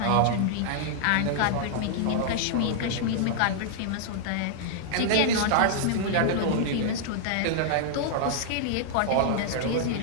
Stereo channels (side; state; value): both; different; correlation -0.01